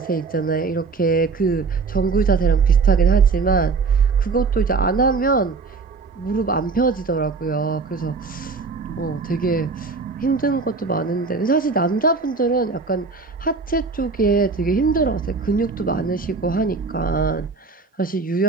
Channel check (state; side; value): quieter; left; 4.4 dB